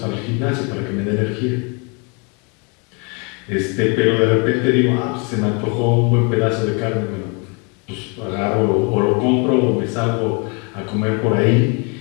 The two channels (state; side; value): quieter; right; 33.3 dB